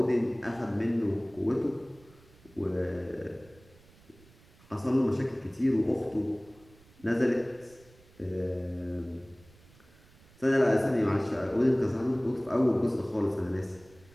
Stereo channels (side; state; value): right; noise; rumble, 27 dB below the sound